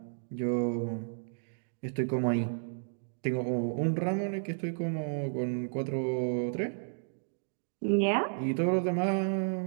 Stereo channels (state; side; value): silent; left; digital silence